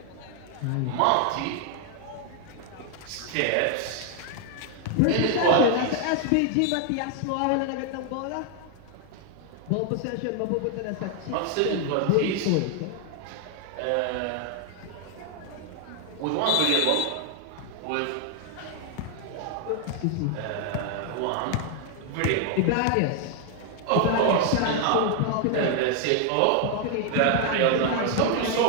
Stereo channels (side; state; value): both; different; correlation 0.00